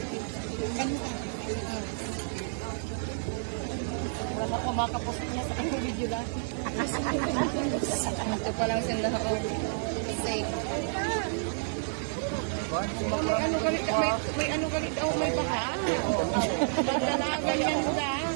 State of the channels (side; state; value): left; silent; digital silence